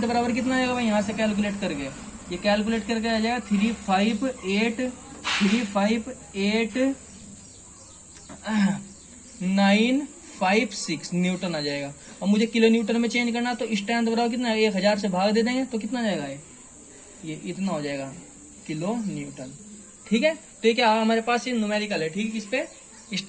बराबर कितना आएगा भाई यहाँ से कैलकुलेट करके, ये कैलकुलेट करके आ जाएगा 358,956 न्यूटन आ जाएगा। और मुझे किलो न्यूटन में चेंज करना, तो स्ट्रेंथ बराबर कितना है 1000 से भाग दे देंगे तो कितना आ जाएगा ये इतना हो जाएगा किलो न्यूटन। ठीक है। तो ये क्या हमारे पास ये न्यूमेरिकल है। ठीक है। इस पे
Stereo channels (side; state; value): both; identical; correlation 1.00